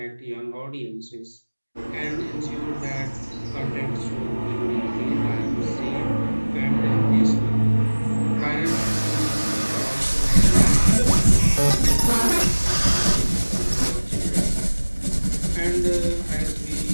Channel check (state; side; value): inverted; both; correlation -1.00